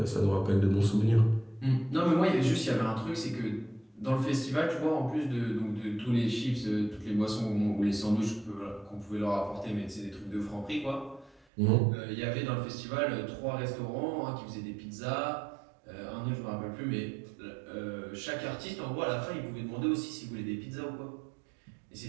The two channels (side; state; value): left; drops out; at 11.4 s